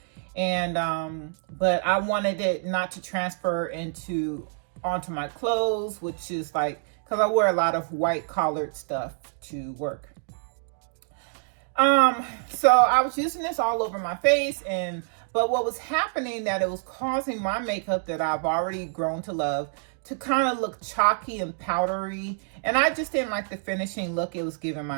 And but I wanted it not to transfer onto my clothes, which is like, because I wear a lot of white collared stuff to work. So I was using this all over my face, but what was happening that it was causing my makeup that I've already grown to love to kind of look chalky and powdery, and I just didn't like the finishing look it was giving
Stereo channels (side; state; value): left; silent; digital silence